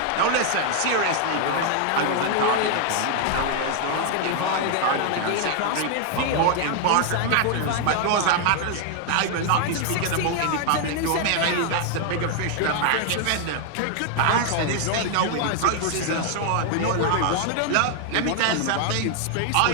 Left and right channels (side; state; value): both; different; correlation 0.00